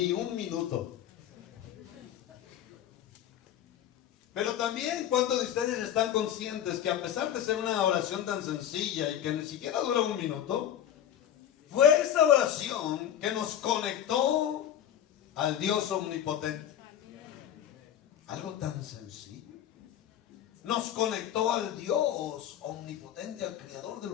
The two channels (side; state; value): right; quieter; 10.5 dB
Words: un minuto? Pero también, ¿cuántos de ustedes están conscientes que a pesar de ser una oración tan sencilla y que ni siquiera dura un minuto, fue esa oración que nos conectó al Dios omnipotente? Algo tan sencillo. Nos conectó al Dios omnipotente, al creador del